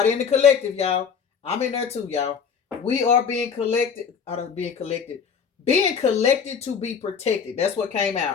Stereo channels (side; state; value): right; quieter; 6.6 dB